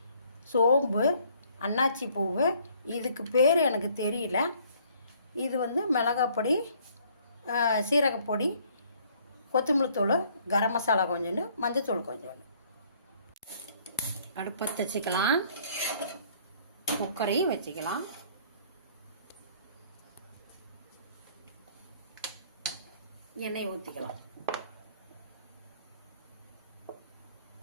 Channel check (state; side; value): inverted; both; correlation -0.61